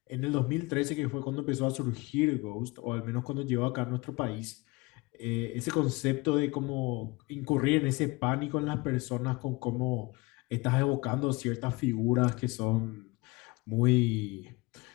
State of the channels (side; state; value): right; quieter; 24.1 dB